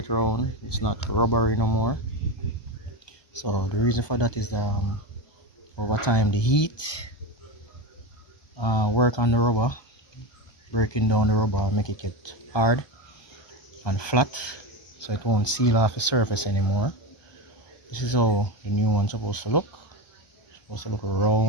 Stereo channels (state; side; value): late; right; 1.2 ms